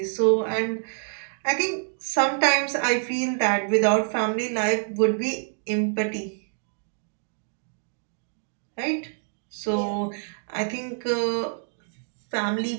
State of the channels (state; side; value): silent; left; digital silence